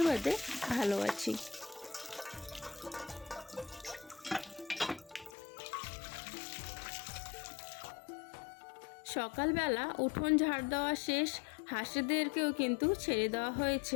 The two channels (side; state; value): right; drops out; at 5.3 s